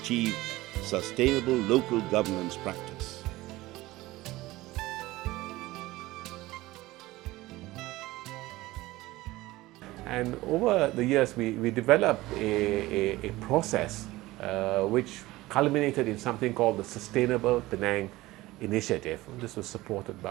sustainable local governance practice. And over the years, we developed a process which culminated in something called the Sustainable Penang Initiative. This was supported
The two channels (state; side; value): quieter; left; 18.5 dB